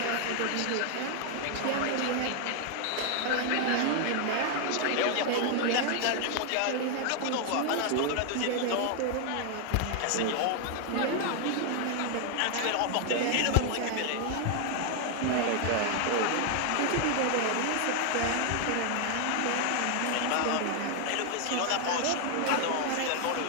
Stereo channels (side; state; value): both; different; correlation 0.00